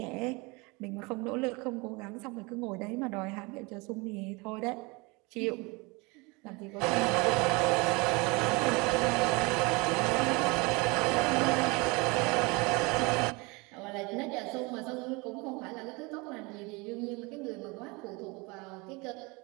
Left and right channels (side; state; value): left; quieter; 26.6 dB